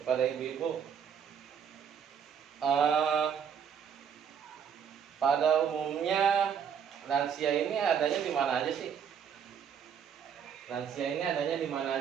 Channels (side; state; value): left; quieter; 7.7 dB